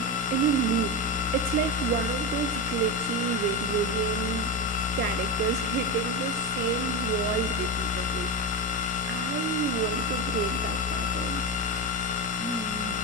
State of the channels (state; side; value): noise; left; rumble, 23 dB below the sound